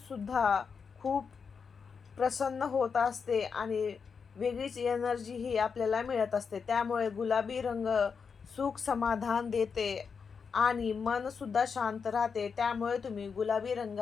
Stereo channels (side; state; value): right; quieter; 5.8 dB